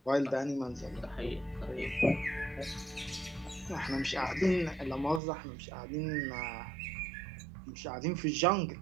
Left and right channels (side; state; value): left; drops out; at 5.2 s